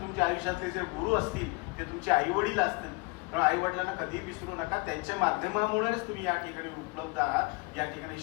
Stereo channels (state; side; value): quieter; right; 26.1 dB